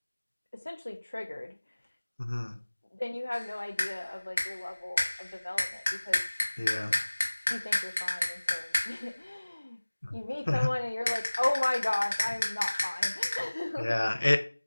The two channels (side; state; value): both; inverted; correlation -1.00